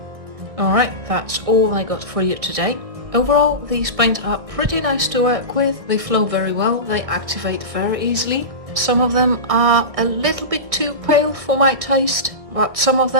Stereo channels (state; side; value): late; left; 1.6 ms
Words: Alright, that's all I got for you today. Overall, these paints are pretty nice to work with. They flow very well, they activate very easily. Some of them are a little bit too pale for my taste, but some of